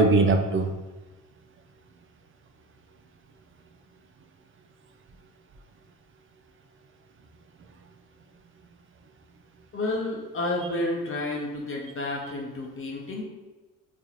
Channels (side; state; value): both; normal; correlation 0.27